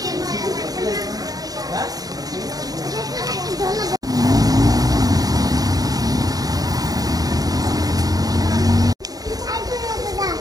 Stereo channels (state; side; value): late; left; 0.18 ms